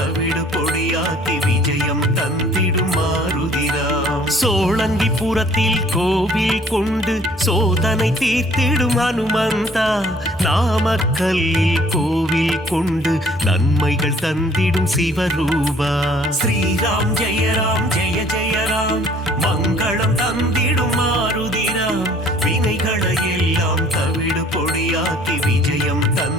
பொடியாக்கி விஜயம் தந்திடும் மாருதிராம். சோழங்கிபுரத்தில் கோவில் கொண்டு சோதனை தீர்த்திடும் ஹனுமந்தா. நாமக்கல்லில் கோவில் கொண்டு நன்மைகள் தந்திடும் சிவரூபா. ஸ்ரீராம் ஜெய ஜெய ராம் மங்களம் தந்திடும் மாருதிராம். வினைகளை எல்லாம் தவிடு பொடியாக்கி விஜயம்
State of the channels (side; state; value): both; normal; correlation 0.56